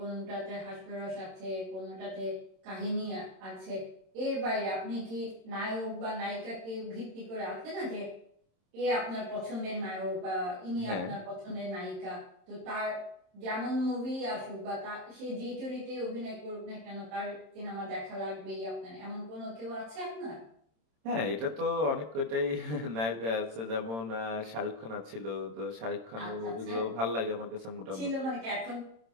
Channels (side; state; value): left; late; 26 ms